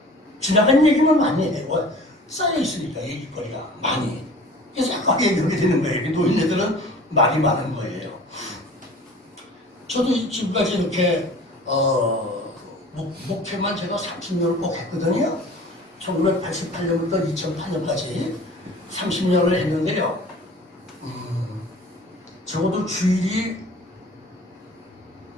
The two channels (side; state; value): both; normal; correlation 0.44